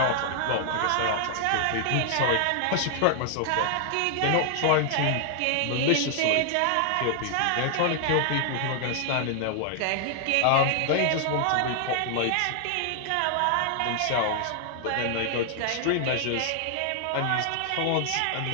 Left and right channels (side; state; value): both; different; correlation 0.00